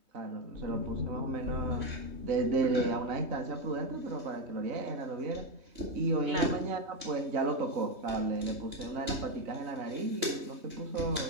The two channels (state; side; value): late; left; 3.2 ms